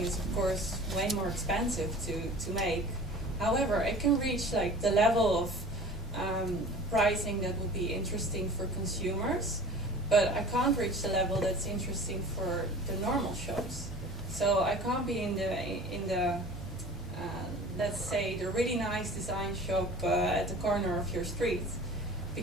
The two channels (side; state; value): both; normal; correlation 0.41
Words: of course, way more expensive to make. However, it can reach like the level of pricing that would be interesting for consumers, but I can't reach the level that's interesting for the normal shops. So I can't be in the let's say the really nice design shop at the corner of your street,